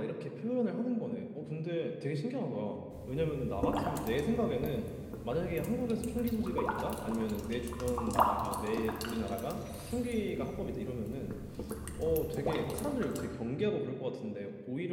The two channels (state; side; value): identical; both; correlation 1.00